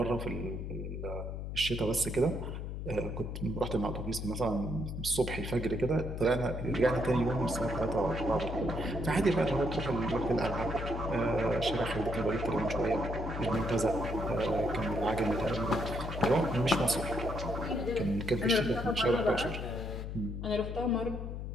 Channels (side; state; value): left; noise; hum, 6 dB below the sound